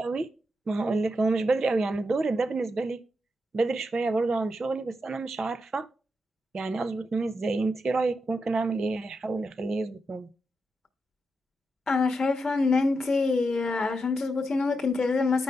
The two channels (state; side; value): normal; both; correlation 0.85